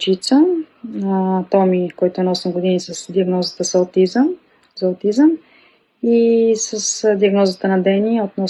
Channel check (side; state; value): both; identical; correlation 1.00